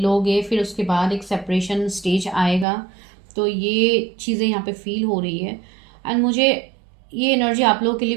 फिर उसके बाद एक सेपरेशन स्टेज आएगा। तो ये चीज़ें यहाँ पे फील हो रही है। एंड मुझे ये एनर्जी आप लोगों के लिए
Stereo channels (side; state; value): left; drops out; at 2.7 s